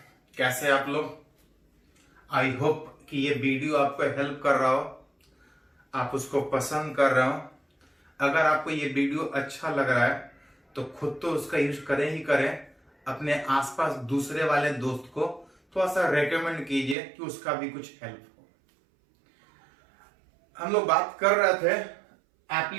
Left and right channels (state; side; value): drops out; left; at 16.9 s